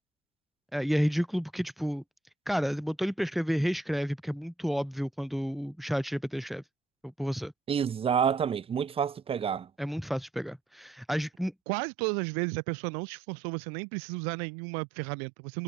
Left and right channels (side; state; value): left; drops out; at 11.6 s